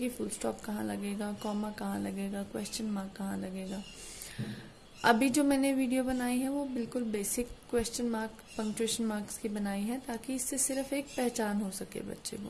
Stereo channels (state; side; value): identical; both; correlation 1.00